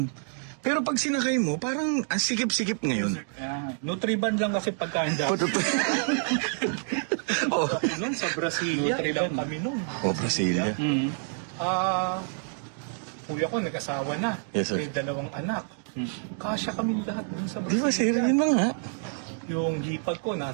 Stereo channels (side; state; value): left; silent; 60 dB below the other